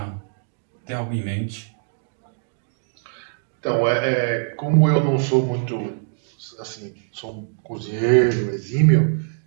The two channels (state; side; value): silent; left; digital silence